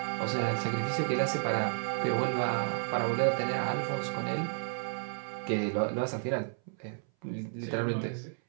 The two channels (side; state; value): left; silent; 57 dB below the other